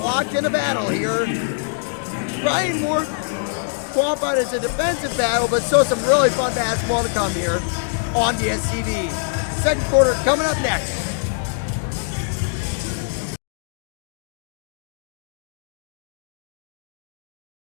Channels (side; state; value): right; silent; digital silence